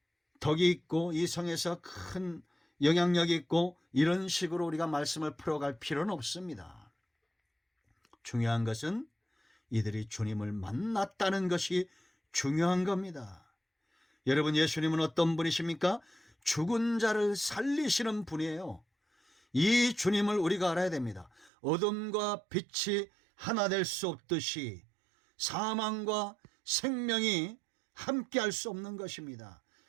덕이 있고 이 성에서 큰 영향력이 있고 이런 식으로 우리가 말씀을 풀어갈 필요는 없습니다. 중요한 것은 이들이 주님을 만났다는 것이 중요한 겁니다. 여러분, 예수님은 어떤 분이십니까? 죽은 자를 살리시는 분이에요. 이 주님을 우리가 알아야 됩니다. 어둠과 빛이 하나 될 수 없듯이 사망과 생명이 함께 할 수 없는 것입니다.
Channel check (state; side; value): drops out; left; at 21.5 s